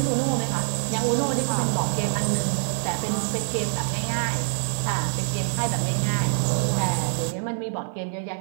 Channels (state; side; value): silent; left; 62 dB below the other